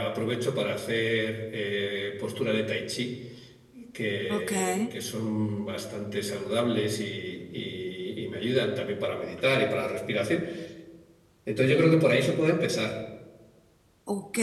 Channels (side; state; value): both; identical; correlation 1.00